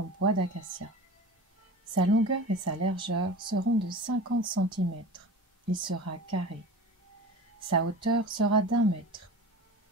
bois d'acacia. Sa longueur et sa largeur seront de 50 cm. Il sera carré. Sa hauteur sera d'1 mètre.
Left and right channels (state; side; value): normal; both; correlation 0.34